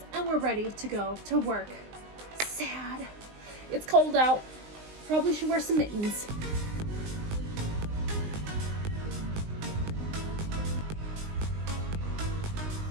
and we're ready to go to work. Sad. It's cold out. Probably should wear some mittens.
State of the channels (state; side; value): late; left; 19 ms